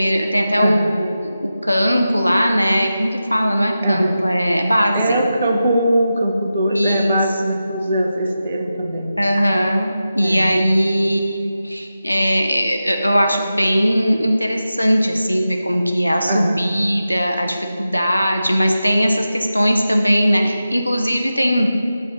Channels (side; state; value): both; inverted; correlation -0.92